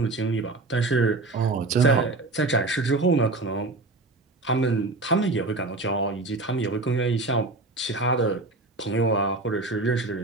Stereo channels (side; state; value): left; quieter; 3.2 dB